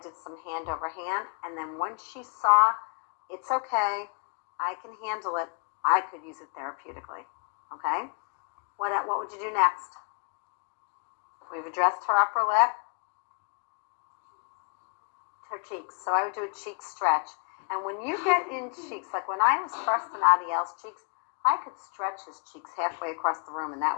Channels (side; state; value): right; quieter; 37.7 dB